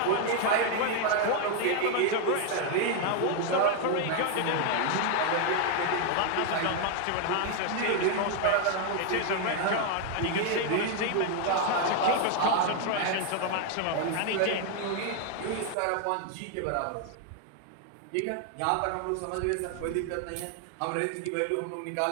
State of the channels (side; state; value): both; different; correlation 0.00